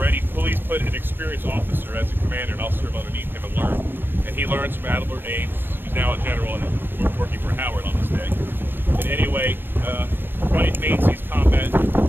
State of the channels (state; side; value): late; left; 0.098 ms